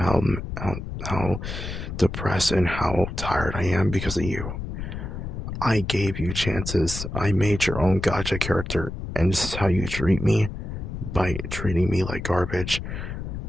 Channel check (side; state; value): left; noise; rumble, 7 dB below the sound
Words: depressed and how tired I am because of you. I gave you chances. I made your own gacha character, and this is how you treat me by treating me like garbage.